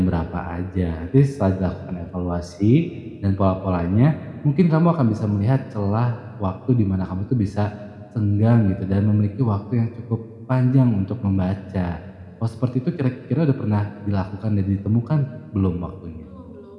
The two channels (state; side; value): identical; both; correlation 1.00